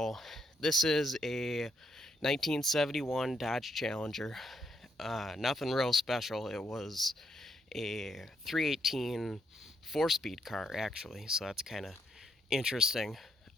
this is a 1971 Dodge Challenger. Nothing real special. It was a 318 4-speed car, actually, so that's kind of interesting.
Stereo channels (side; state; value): both; normal; correlation 0.76